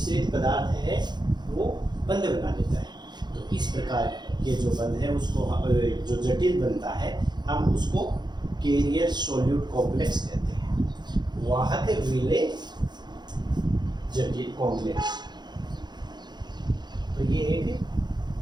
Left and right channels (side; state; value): left; late; 0.21 ms